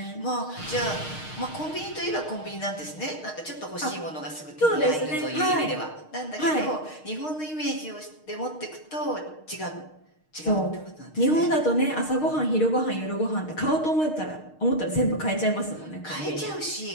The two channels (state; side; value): late; right; 6.5 ms